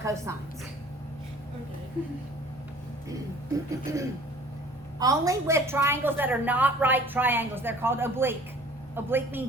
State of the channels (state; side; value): normal; both; correlation 0.50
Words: Okay. Only with triangles that are not right triangles. They're called oblique. Oblique